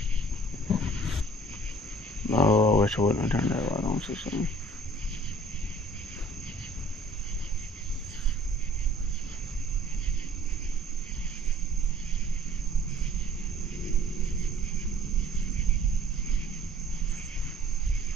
Oh, I wish I wouldn't have turned that light on so soon.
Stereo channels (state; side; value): normal; both; correlation 0.53